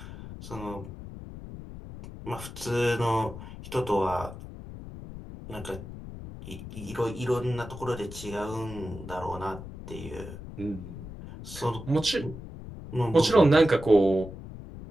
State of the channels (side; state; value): left; noise; rumble, 12 dB below the sound